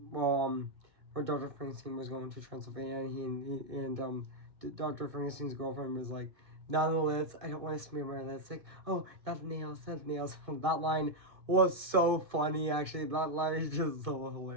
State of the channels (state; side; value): late; left; 1.6 ms